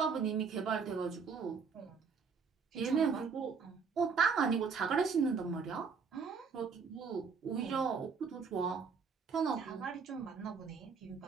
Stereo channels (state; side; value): quieter; left; 5.6 dB